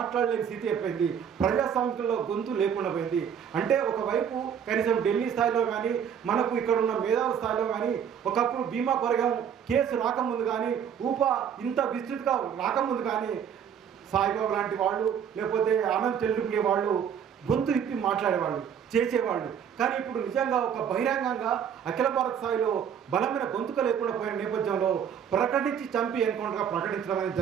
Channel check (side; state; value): left; quieter; 8.2 dB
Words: స్థితి అయిపోయింది. ప్రజాస్వామ్యంలో గొంతు లేకుండా పోయింది. అంటే ఒకవైపు కనీసం ఢిల్లీ స్థాయిలో కానీ, మనకు ఇక్కడ ఉన్న మేధావుల స్థాయిలో కానీ, ఒకప్పుడు భీమా కొరగం కేసు రాకముందు కానీ, ఇంత విస్తృతిగా రాకముందు కానీ సాయిబాబు లాంటి వాళ్ళు, లేకపోతే ఆనంద్ చెల్లుకునే వాళ్ళు గొంతు ఇప్పి మాట్లాడేవాళ్ళు, చేసేవాళ్ళు. కానీ ఇప్పుడు నిజంగా ఒక బహిరంగంగా అఖిల భారత స్థాయిలో బలమైన గొంతుక లేకుండా పోయిన నేపథ్యంలో ప్రకటించి చంపి ఎన్కౌంటర్గా ప్రకటించడం అనేది